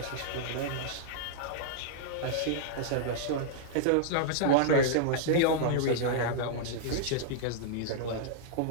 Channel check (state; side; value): different; both; correlation -0.01